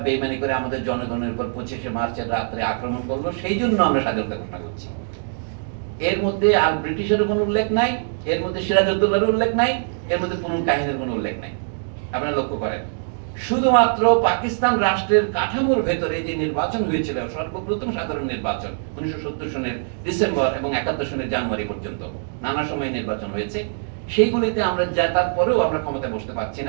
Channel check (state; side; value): silent; left; digital silence